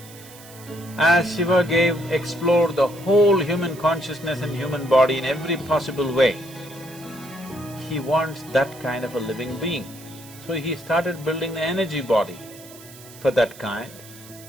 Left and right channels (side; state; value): right; noise; hiss, 19 dB below the sound